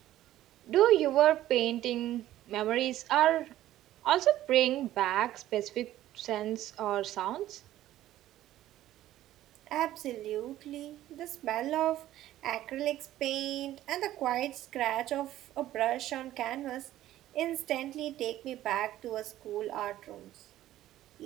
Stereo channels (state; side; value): quieter; left; 13.9 dB